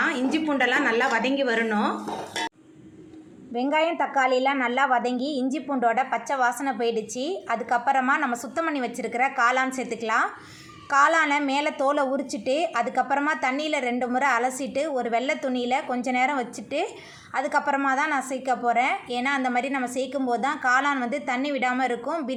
இஞ்சி பூண்டெல்லாம் நல்லா வதங்கி வரணும். வெங்காயம் தக்காளிலாம் நல்லா வதங்கி இஞ்சி பூண்டோட பச்சை வாசனை போயிடுச்சு. அதுக்கப்புறமா நம்ம சுத்தம் பண்ணி வச்சுருக்கிற காளான் சேர்த்துக்கலாம். காளானை மேலே தோலை உரிச்சிட்டு அதுக்கப்புறமா தண்ணியில் 2 முறை அலசிட்டு ஒரு வெள்ளை துணியில் கொஞ்ச நேரம் வச்சுட்டு அதுக்கப்புறமா தான் நான் சேர்க்க போகிறேன். ஏன்னா அந்த மாதிரி நம்ம சேர்க்கும் போது தான் காளான் தண்ணி விடாமல் இருக்கும்.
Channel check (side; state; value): both; identical; correlation 1.00